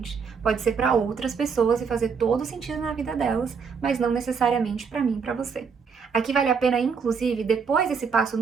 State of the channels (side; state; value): left; quieter; 5.9 dB